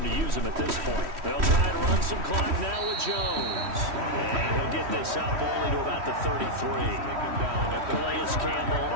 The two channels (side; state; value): left; late; 3.1 ms